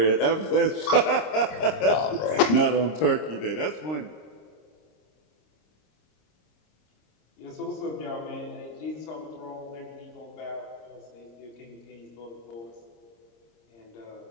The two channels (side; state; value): right; late; 26 ms